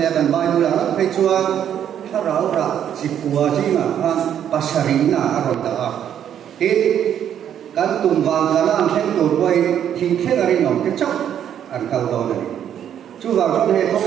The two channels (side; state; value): left; quieter; 9.6 dB